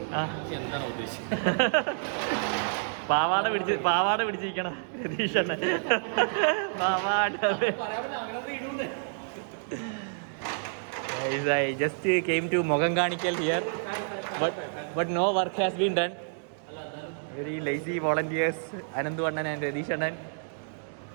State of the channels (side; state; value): left; silent; digital silence